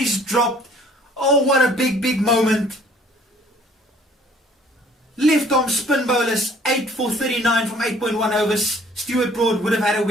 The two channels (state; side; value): normal; both; correlation 0.56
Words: dropped. Oh, what a big moment. Left arm spin bowlers, 8 for 39 from 8.1 overs. Stuart Broad would have had a